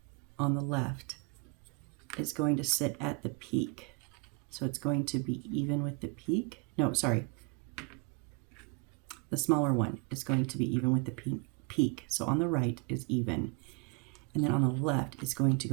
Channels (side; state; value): left; quieter; 33.6 dB